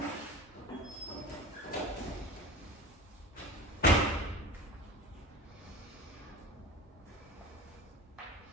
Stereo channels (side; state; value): both; normal; correlation 0.34